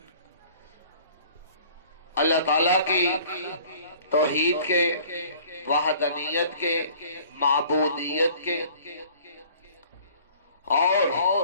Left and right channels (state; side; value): inverted; both; correlation -0.51